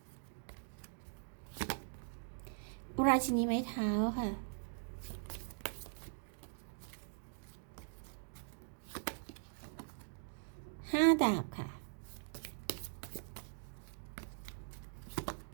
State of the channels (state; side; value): silent; left; digital silence